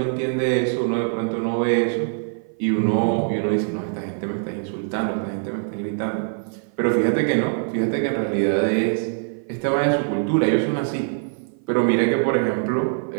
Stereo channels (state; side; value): silent; left; 55 dB below the other